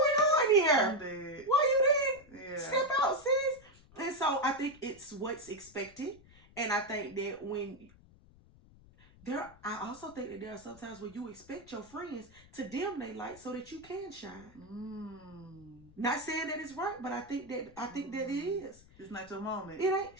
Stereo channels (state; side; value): noise; left; rumble, 25 dB below the sound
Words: on here? I'm dead. Why you didn't step out, sis? And so I think it's what's expected. And I think that I also think that there are sometimes where you expect your friends to dim their light so that you can shine. Not saying that it's right, but I think that it is. It's not your moment. It ain't.